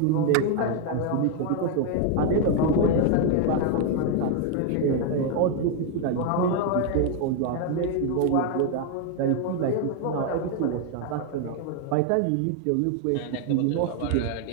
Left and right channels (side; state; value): both; different; correlation 0.01